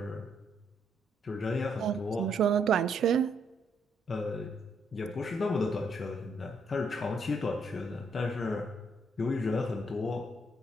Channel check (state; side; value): normal; both; correlation 0.73